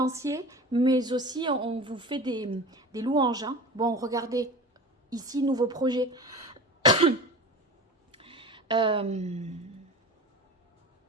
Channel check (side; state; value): both; normal; correlation 0.34